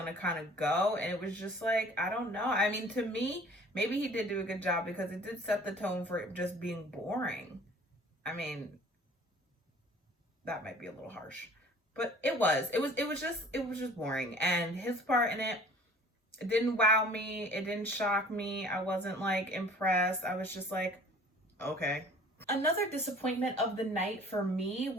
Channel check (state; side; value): normal; both; correlation 0.49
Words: kind of go, and it was just like, I don't know. I mean, to me, maybe he did do a good job because it did set the tone for it just being boring. I mean, that might be a little harsh, but it was just boring. And his part in it didn't wow me. It didn't shock me. I wasn't like impressed. I was just like, okay. Another disappointment of the night for me